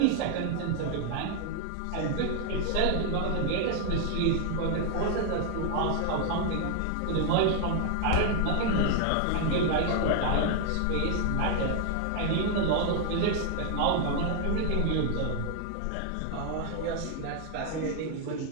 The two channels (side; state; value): both; different; correlation 0.00